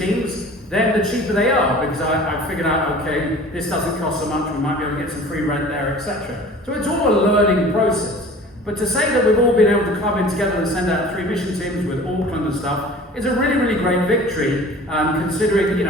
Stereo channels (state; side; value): normal; both; correlation 0.44